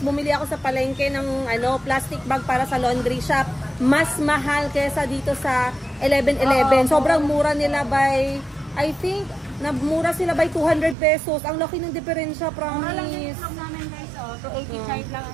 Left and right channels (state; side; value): drops out; left; at 11.0 s